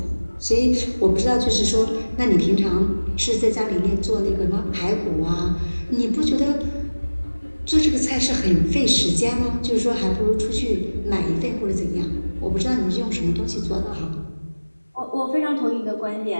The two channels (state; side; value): inverted; both; correlation -1.00